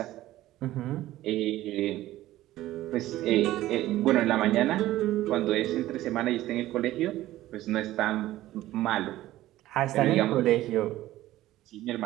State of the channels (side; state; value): left; quieter; 15.3 dB